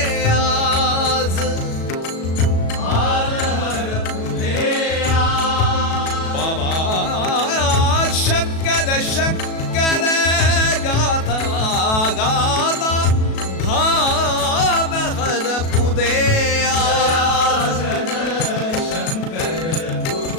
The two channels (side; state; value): right; late; 37 ms